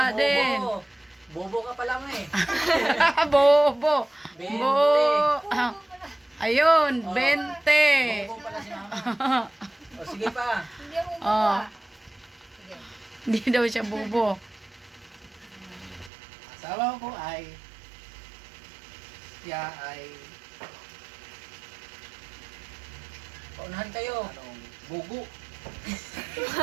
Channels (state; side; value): drops out; left; at 16.1 s